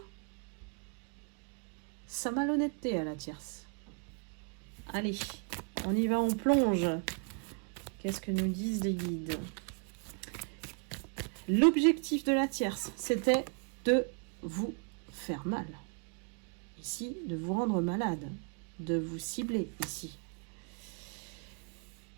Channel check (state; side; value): quieter; left; 38.4 dB